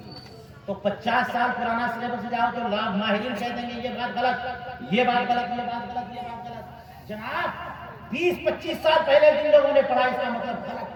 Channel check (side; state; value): both; identical; correlation 1.00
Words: تو 50 سال پرانا سلیبس جاؤ تو لاکھ ماہرین کہہ دیں گے یہ بات غلط، یہ بات غلط، یہ بات غلط، یہ بات غلط. جناب 20-25 سال پہلے جن لوگوں نے پڑھا اس کا مطلب غلط